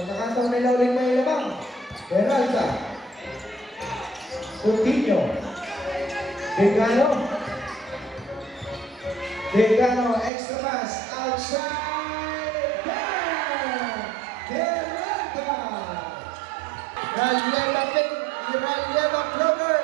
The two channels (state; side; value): drops out; left; at 10.3 s